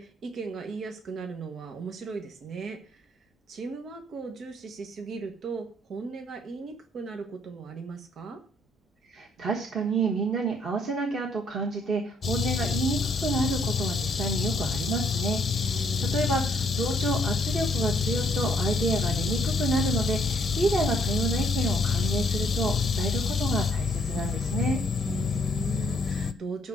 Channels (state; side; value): normal; both; correlation 0.68